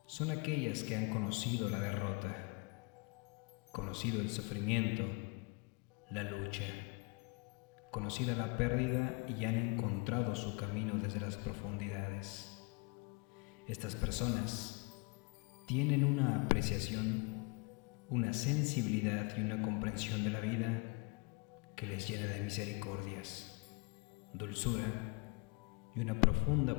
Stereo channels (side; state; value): right; quieter; 30.9 dB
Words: son aquellas que han conocido la derrota, conocido el sufrimiento, la lucha, conocida la pérdida y han encontrado su camino desde las profundidades. Estas personas tienen una apreciación, una sensibilidad y una comprensión de la vida que les llena de misericordias, dulzura y una profunda